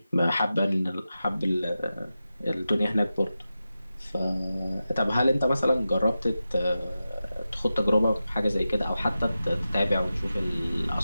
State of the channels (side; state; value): both; inverted; correlation -0.92